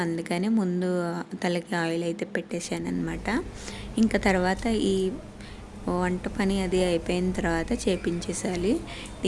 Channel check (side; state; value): both; identical; correlation 1.00